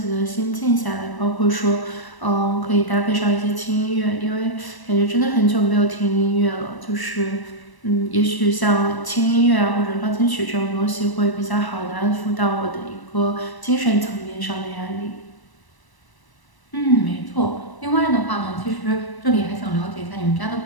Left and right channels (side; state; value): right; late; 1.0 ms